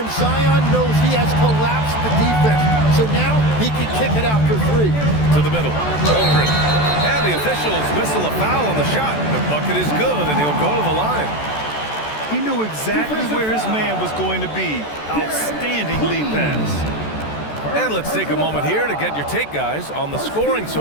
Zion knows he has collapsed the defense. So now he can kick it out for 3. To the middle. Holmgren. And the officials whistle a foul on the shot. The bucket is good, and he'll go to the line. He knew exactly where his man was going to be. Outstanding lead pass. And let's take a moment here to get your take, guys, on the scoring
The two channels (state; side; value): late; right; 14 ms